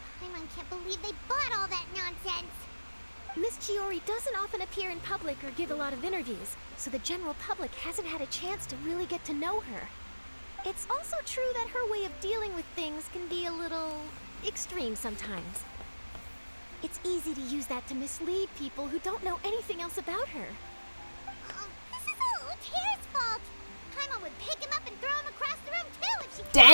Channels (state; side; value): inverted; both; correlation -1.00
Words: Paimon can't believe they bought all that nonsense. Miss Chiori doesn't often appear in public or give a lot of interviews, so the general public hasn't had a chance to really get to know her. It's also true that her way of dealing with things can be a little extreme sometimes. It's easy to use that to mislead people who don't know anything else about her. This is all Luter's fault. Paimon would pick him up and throw him across the room too if she could.